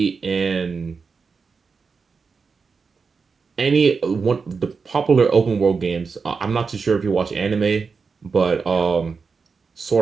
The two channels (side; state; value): left; quieter; 5.1 dB